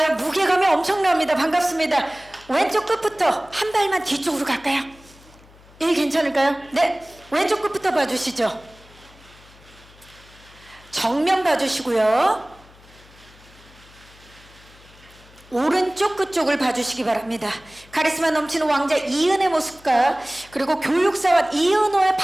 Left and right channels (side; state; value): left; noise; hum, 25 dB below the sound